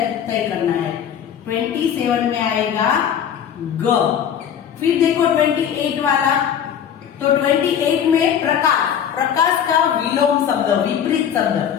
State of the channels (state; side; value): quieter; right; 8.8 dB